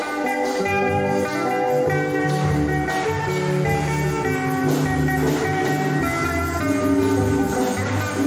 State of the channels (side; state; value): both; identical; correlation 1.00